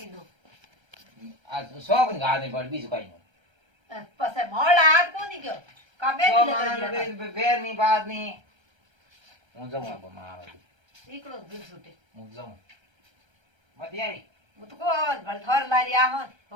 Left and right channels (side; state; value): left; late; 1.3 ms